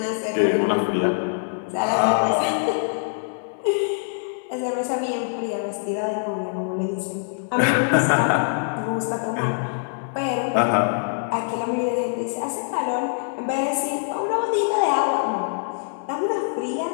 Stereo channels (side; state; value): right; silent; 58 dB below the other